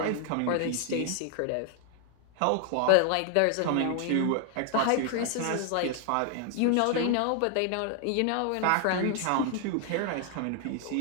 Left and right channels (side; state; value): both; different; correlation 0.00